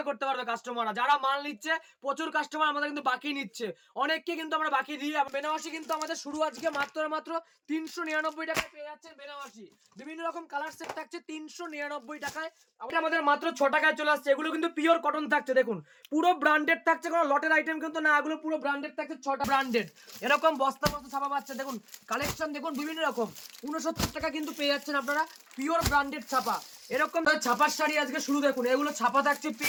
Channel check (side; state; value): both; identical; correlation 1.00